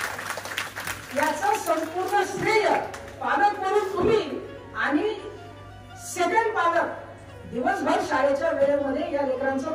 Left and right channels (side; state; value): both; identical; correlation 1.00